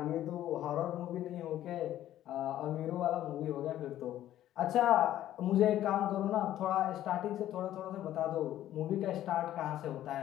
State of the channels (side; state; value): right; quieter; 12.7 dB